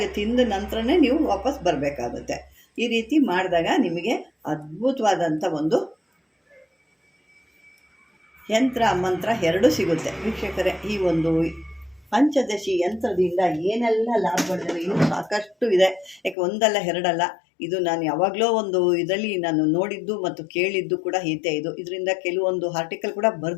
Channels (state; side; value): drops out; right; at 16.4 s